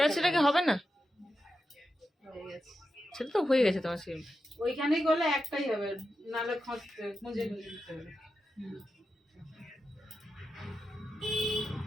সেটা কি হবে না হয়ে গেছে সেটা তো হয়ে গেছে তোমার সিম ওইখানে গেলে একটাই হবে নালে খুঁজে দিতে হবে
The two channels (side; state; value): both; normal; correlation 0.89